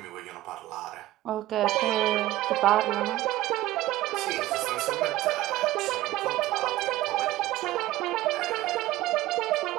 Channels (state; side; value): quieter; left; 16.1 dB